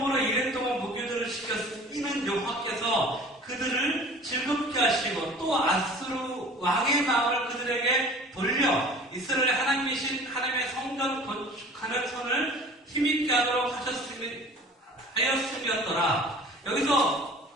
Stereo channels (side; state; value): both; normal; correlation 0.45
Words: 이래 동안 무교들을 시켰으면 여호와께서 그들을 즐겁게 하시고 또 아수르 왕의 마음을 그들에게 돌려 이스라엘 하나님이신 하나님의 성전 건축하는 손을 힘있게 하도록 하였음이었더라. 여기서